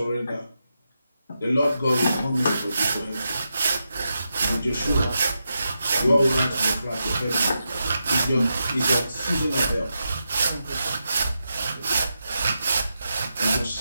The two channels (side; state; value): both; inverted; correlation -0.87